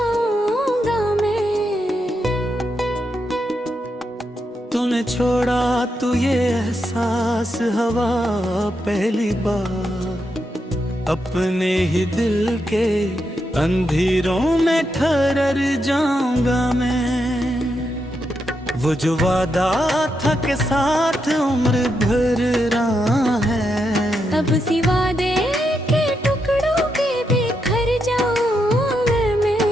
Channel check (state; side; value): normal; both; correlation 0.83